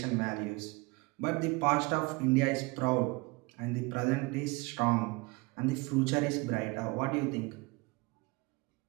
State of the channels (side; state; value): left; quieter; 25.9 dB